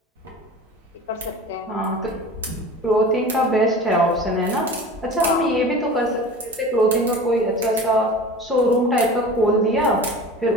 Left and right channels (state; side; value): normal; both; correlation 0.37